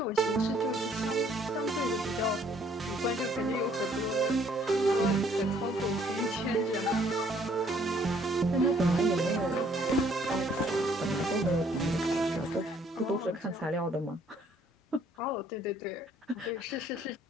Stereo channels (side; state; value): both; normal; correlation 0.63